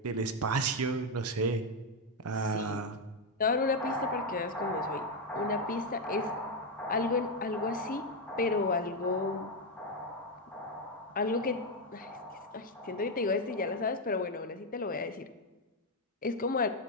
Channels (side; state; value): both; normal; correlation 0.04